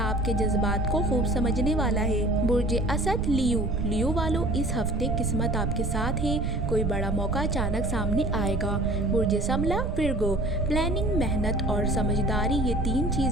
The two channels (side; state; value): right; noise; rumble, 1 dB below the sound